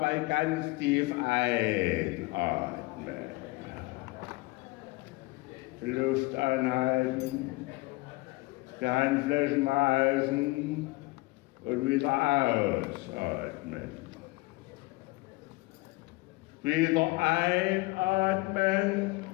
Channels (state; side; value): quieter; right; 23.0 dB